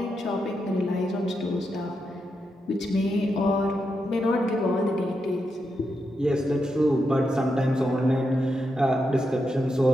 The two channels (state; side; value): normal; both; correlation 0.85